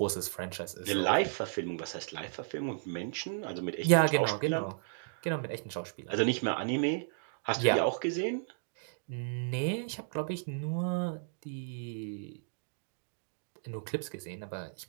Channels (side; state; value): left; silent; digital silence